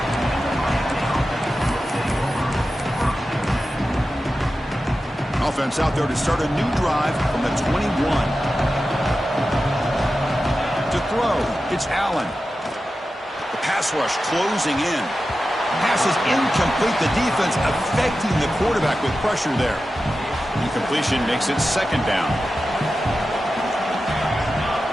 Offense out there to start a new drive from the 21. To throw, it's Allen. The pass rush closing in. Pass is incomplete. The defense affecting the quarterback with pressure there. Incompletion makes it 2nd down.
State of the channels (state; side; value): normal; both; correlation 0.93